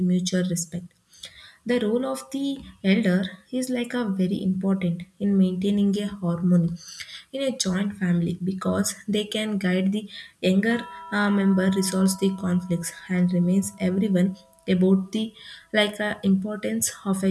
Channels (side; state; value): both; identical; correlation 1.00